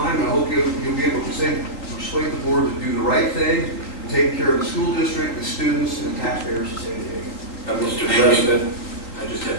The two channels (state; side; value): late; right; 3.9 ms